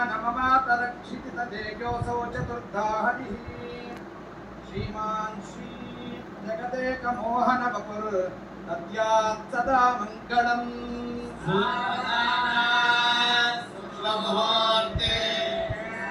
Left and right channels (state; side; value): identical; both; correlation 1.00